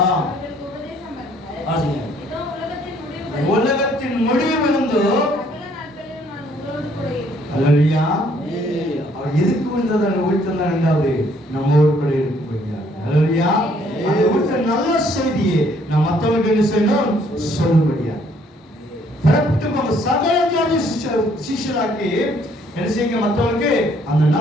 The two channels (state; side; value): normal; both; correlation 0.64